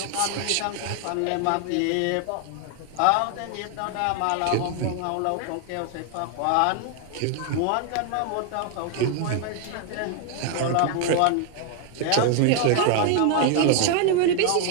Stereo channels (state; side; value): different; both; correlation 0.00